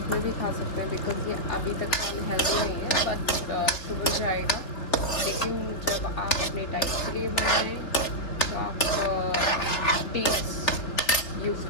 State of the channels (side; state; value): right; late; 3.5 ms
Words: में भी खा सकते हैं, बिकॉज ये अभी तक अनहेल्दी नहीं है, बट शुगर जाएगा। लेकिन जब आप अपने डाइट के लिए बनाएं तो आप डेट्स यूज़